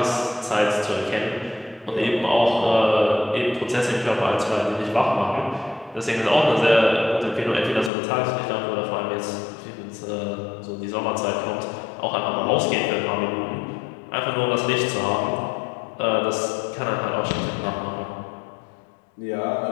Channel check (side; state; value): right; drops out; at 7.9 s